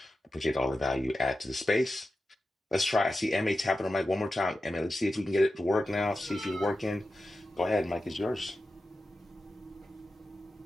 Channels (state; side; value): normal; both; correlation 0.92